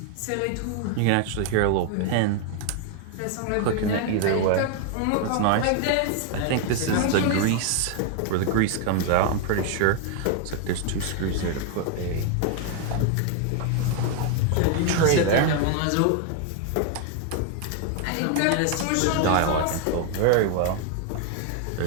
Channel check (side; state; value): both; different; correlation 0.00